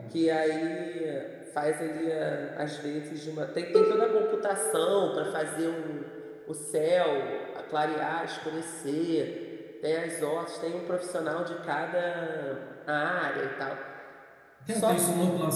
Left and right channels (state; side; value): identical; both; correlation 1.00